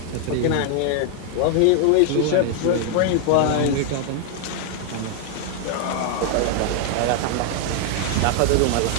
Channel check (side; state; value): both; different; correlation 0.00